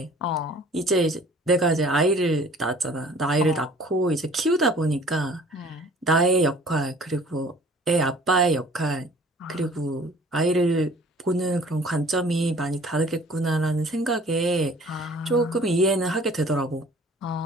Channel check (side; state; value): both; normal; correlation 0.51